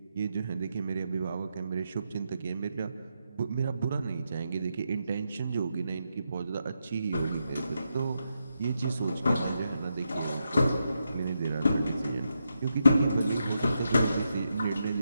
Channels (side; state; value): both; inverted; correlation -0.85